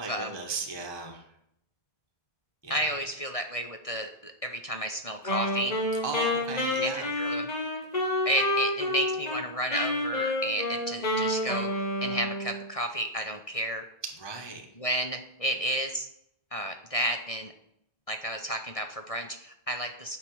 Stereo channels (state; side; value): late; right; 1.6 ms